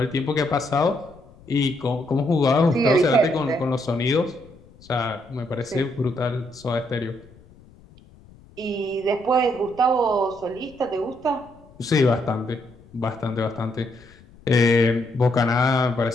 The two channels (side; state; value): left; noise; rumble, 25 dB below the sound